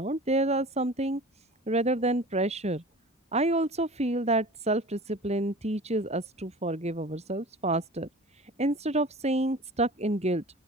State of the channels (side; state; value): both; normal; correlation 0.39